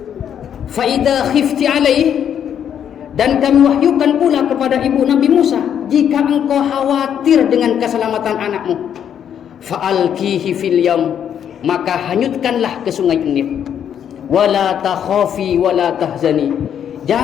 Fa idza khifti alaih, dan kami wahyukan pula kepada ibu Nabi Musa, jika engkau khawatir dengan keselamatan anakmu, fa'alqihi fil yam, maka hanyutkanlah ke sungai Nil. Wala takhafi wala tahzani,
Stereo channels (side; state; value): right; quieter; 9.0 dB